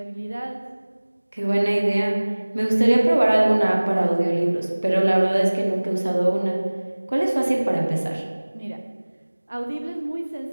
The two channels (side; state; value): both; inverted; correlation -1.00